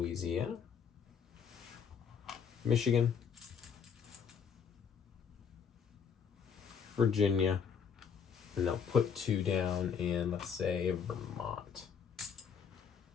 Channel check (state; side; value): quieter; right; 6.9 dB